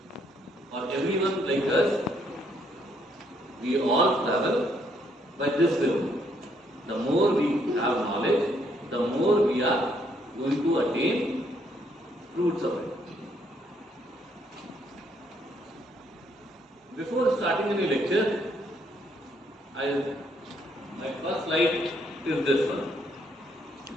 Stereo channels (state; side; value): normal; both; correlation 0.71